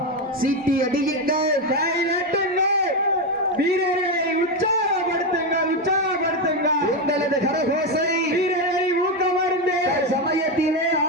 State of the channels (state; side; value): normal; both; correlation 0.10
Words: சீட்டி அடியுங்கள், கை நட்டுங்கள், வீரர்களை உற்சாகப்படுத்துங்கள், உற்சாகப்படுத்துங்கள். உங்களது கரகோசை வீரர்களை ஊக்கமருந்து சமயத்திலே